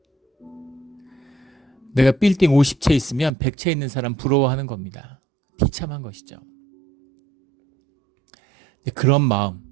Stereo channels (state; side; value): drops out; left; at 3.3 s